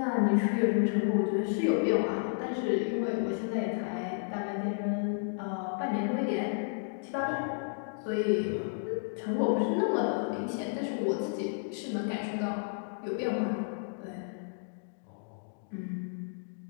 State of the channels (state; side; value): silent; right; digital silence